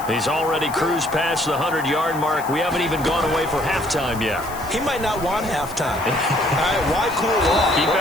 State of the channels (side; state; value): left; noise; hiss, 16 dB below the sound